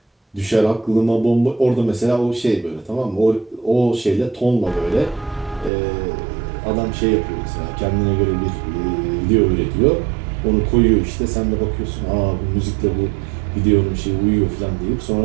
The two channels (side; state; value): left; drops out; at 5.7 s